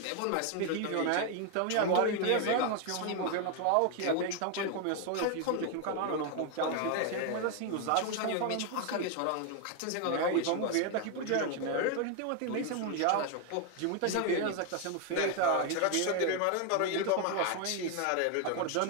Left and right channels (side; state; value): both; different; correlation 0.01